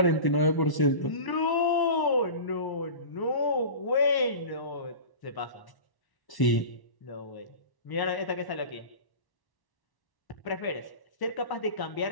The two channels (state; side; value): late; right; 1.1 ms